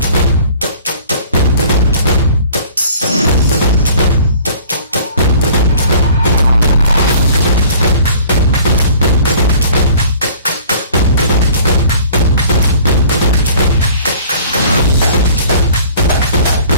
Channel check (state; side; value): inverted; both; correlation -0.50